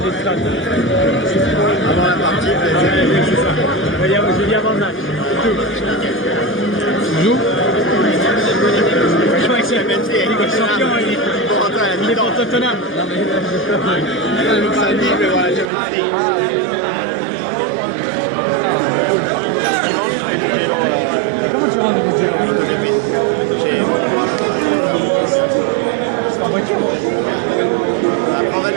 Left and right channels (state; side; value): drops out; left; at 15.7 s